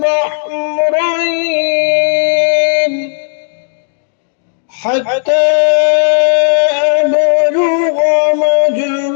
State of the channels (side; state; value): right; silent; 65 dB below the other